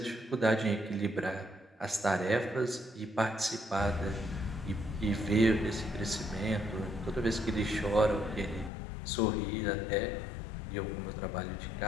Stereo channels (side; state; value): right; drops out; at 8.7 s